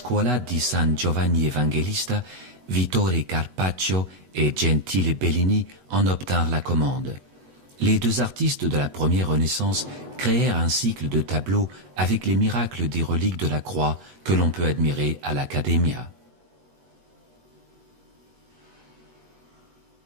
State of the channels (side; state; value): left; late; 8.1 ms